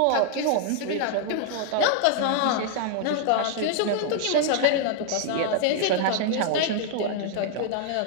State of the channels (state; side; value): different; both; correlation 0.00